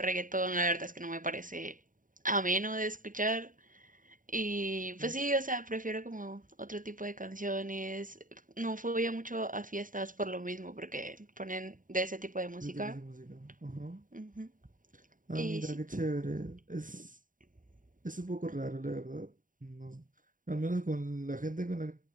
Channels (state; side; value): late; left; 0.39 ms